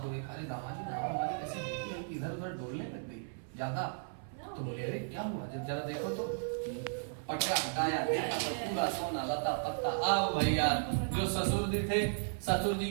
को देखा, अरे दामाद जी नाव हमारी कैसे देखी है कि इधर उधर डोलने लग गई ज्यादा। तो बोले अरे क्या हुआ, जब जरा देखो तो पटका हटाया, देखा तो पूरा सोना लता पत्ता। अब भैया जो ससुर जी थे, ससुर जी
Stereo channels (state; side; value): silent; left; 54 dB below the other